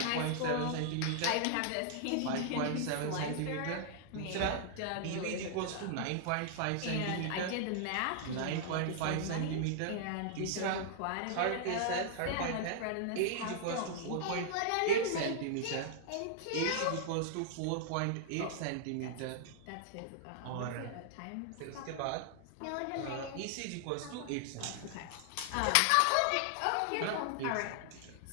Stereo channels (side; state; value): both; different; correlation -0.01